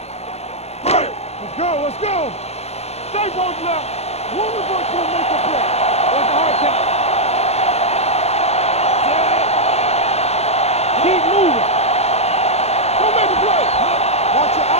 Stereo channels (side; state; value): right; late; 0.31 ms